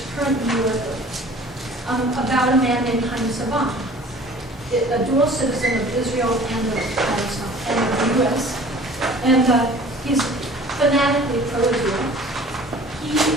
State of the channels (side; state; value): both; normal; correlation 0.47